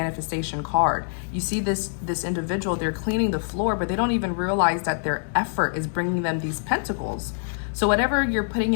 card. You see this individual, they're cleaning the floor, but they don't even realize that their effort is bringing them these pentacles. So whatever you're putting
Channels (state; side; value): silent; right; 61 dB below the other